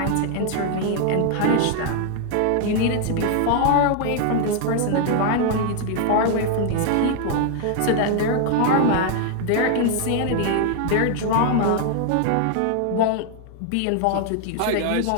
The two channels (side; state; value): both; different; correlation 0.00